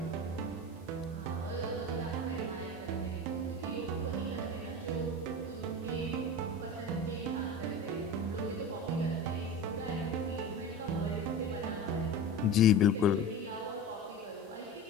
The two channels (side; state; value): both; normal; correlation 0.30